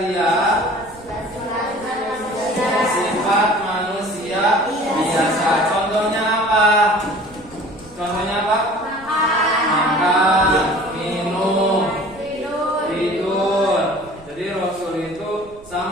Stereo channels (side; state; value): right; noise; rumble, 23 dB below the sound